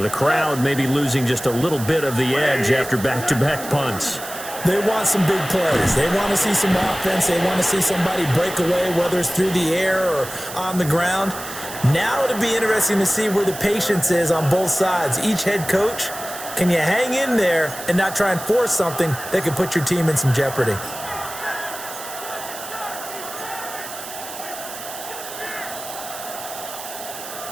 The crowd may be losing just a little bit of the edge after back-to-back punts. They want some big plays. They want to see some offense. They want to see somebody break away, whether it's through the air or on the ground. Now it'll be interesting to see where the patience is on both sides. Each head coach, can you hang in there and not try and force something that could put your team in some jeopardy?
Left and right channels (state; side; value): noise; right; hiss, 11 dB below the sound